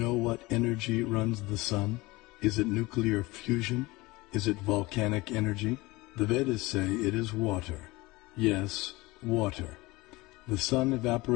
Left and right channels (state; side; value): quieter; right; 21.6 dB